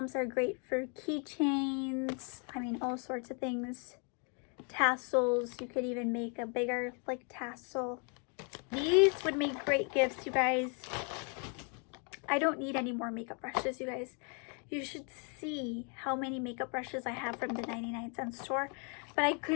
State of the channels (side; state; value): right; quieter; 37.7 dB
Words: are great for keychains. I mean, all sorts of things. Tassels. You could even make a bigger, like, tassel. These would make great gifts, you guys. I don't need any more makeup brushes, you guys. You should see how many makeup brushes I have from the 99-cent store. But I